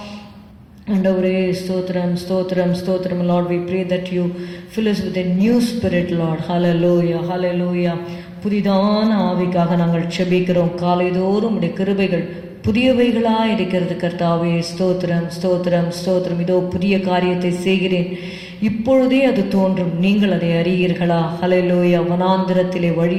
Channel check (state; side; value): identical; both; correlation 1.00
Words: ஆண்டவரே ஸ்தோத்திரம் ஸ்தோத்திரம் ஸ்தோத்திரம். Lord, we pray that you fill us with a new spirit, Lord. Hallelujah hallelujah. புதிதான ஆவிக்காக நாங்கள் செபிக்கிறோம். காலைதோறும் உடைய கிருபைகள் புதியவைகளாக இருக்கிறது கர்த்தாவே. ஸ்தோத்திரம் ஸ்தோத்திரம் ஸ்தோத்திரம். இதோ புதிய காரியத்தை செய்கிறேன், இப்பொழுதே அது தோன்றும், நீங்கள் அதை அறியீர்களா? ஹல்லேலூயா. வனாந்திரத்திலே